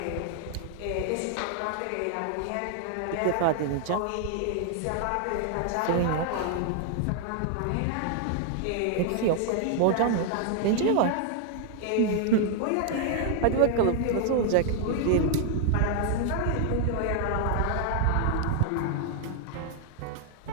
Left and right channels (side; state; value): both; different; correlation 0.00